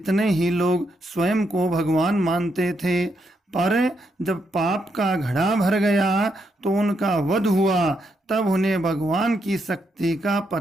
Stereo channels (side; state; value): both; normal; correlation 0.79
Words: ही लोग स्वयं को भगवान मानते थे। पर जब पाप का घड़ा भर गया तो उनका वध हुआ, तब उन्हें भगवान की शक्ति का